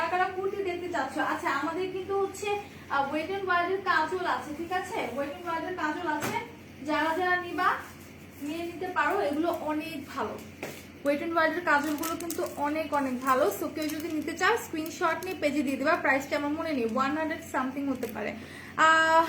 কারা কুর্তি দেখতে চাচ্ছ? আচ্ছা, আমাদের কিন্তু হচ্ছে ওয়েট এন্ড ওয়াইল্ডের কাজল আছে, ঠিক আছে, ওয়েট এন্ড ওয়াইল্ডের কাজল আছে। যারা যারা নিবা নিয়ে নিতে পারো, এগুলো অনেক ভালো। ওয়েট এন্ড ওয়াইল্ডের কাজলগুলো কিন্তু অনেক অনেক ভালো। সো কেউ যদি নিতে চাও স্ক্রিনশট নিয়ে পেজে দিয়ে দিবা। প্রাইসটা আমার মনে নেই, 100 সামথিং হতে পারে।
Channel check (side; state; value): both; identical; correlation 1.00